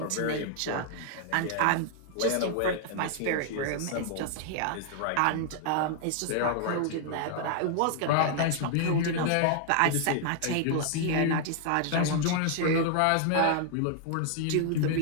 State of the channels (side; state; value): both; different; correlation 0.00